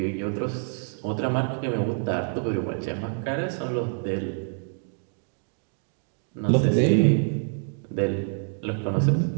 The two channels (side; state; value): left; silent; 60 dB below the other